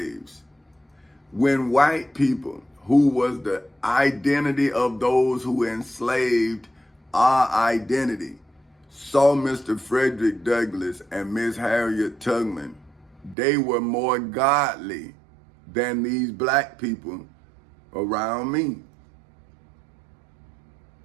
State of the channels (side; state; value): left; drops out; at 13.4 s